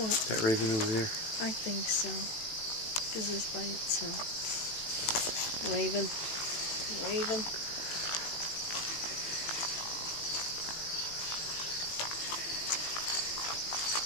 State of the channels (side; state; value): right; late; 18 ms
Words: That raven over there? I think so. Because it's by itself. Raven. Raven.